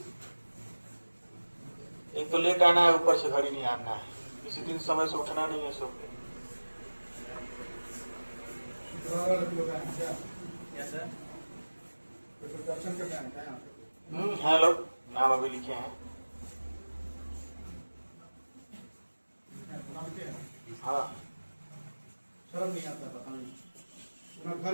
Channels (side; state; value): both; inverted; correlation -1.00